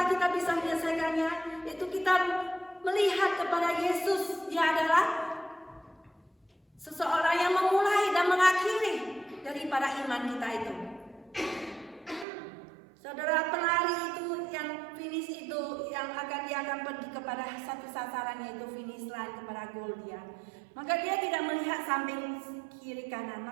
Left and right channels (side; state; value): left; drops out; at 12.2 s